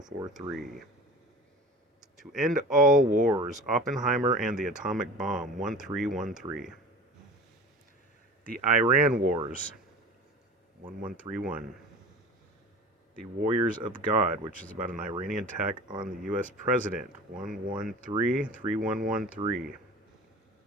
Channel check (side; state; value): both; normal; correlation 0.36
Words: To End All Wars, Oppenheimer and the Atomic Bomb, 1313. The Iran Wars, 1131. The Warriors of God, which is about an Iranian attack on the U.S. president, 1133113.